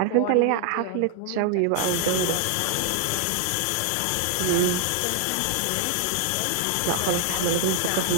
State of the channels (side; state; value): both; different; correlation 0.00